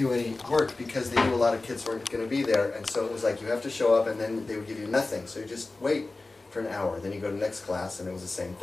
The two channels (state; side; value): quieter; right; 3.3 dB